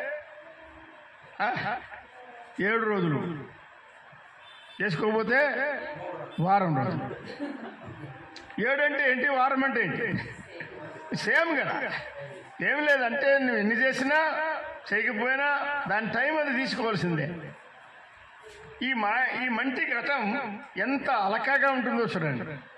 7 రోజులు, చేసుకోకపోతే వారం రోజులు. 7 అంటే ఏంటి, వారం అంటే ఏంటి? సేమ్ కదా. ఏం లేదంటే నువ్వు ఎన్ని చేసినా చేయకపోయినా దాని టైం అది తీసుకోవాల్సిందే. ఈ మంటి ఘటం ఎంత అలకాగా ఉంటుందో చూడండి.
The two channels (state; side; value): identical; both; correlation 1.00